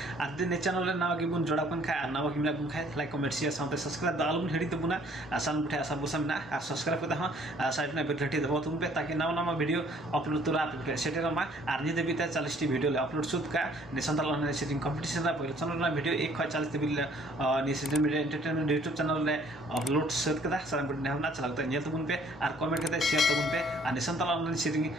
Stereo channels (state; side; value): normal; both; correlation 0.60